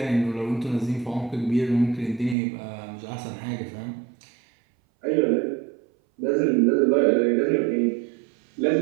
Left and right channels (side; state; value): left; drops out; at 2.4 s